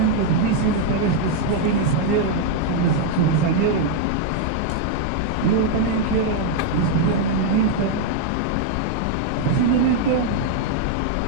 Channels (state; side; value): different; both; correlation 0.00